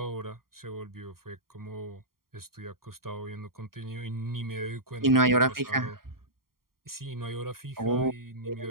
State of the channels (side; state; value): left; late; 0.92 ms